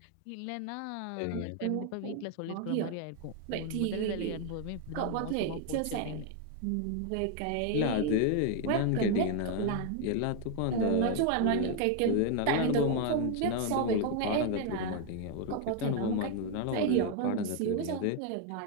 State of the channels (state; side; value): different; both; correlation 0.01